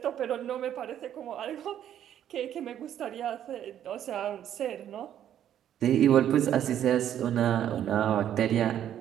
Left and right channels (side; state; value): left; quieter; 10.5 dB